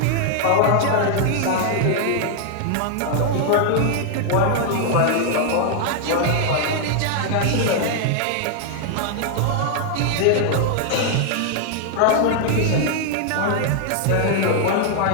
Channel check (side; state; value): both; different; correlation 0.00